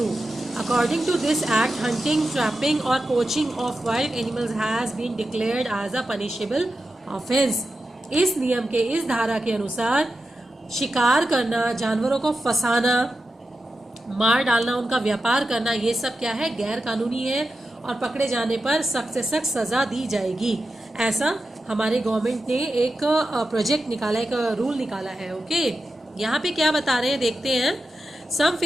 According to this act, hunting, trapping or poaching of wild animals has been declared as a punishable offense. इस नियम के, इस धारा के अनुसार शिकार करना, जानवरों को फंसाना, मार डालना, उनका व्यापार करना, ये सब क्या है, गैर कानूनी है और पकड़े जाने पर सख्त से सख्त सजा दी जाएगी। ऐसा हमारे गवर्नमेंट ने एक प्रोजेक्ट निकाला, एक रूल निकाला है। ओके, यहाँ पे क्या बता रहे हैं देखते हैं। Some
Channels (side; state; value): both; normal; correlation 0.90